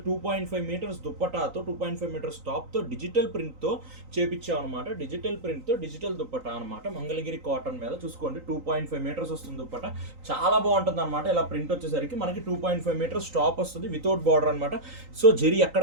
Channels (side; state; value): left; late; 3.9 ms